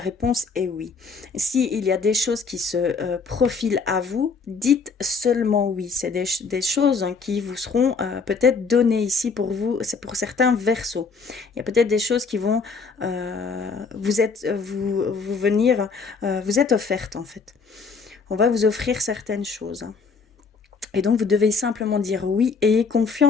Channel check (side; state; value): right; quieter; 4.9 dB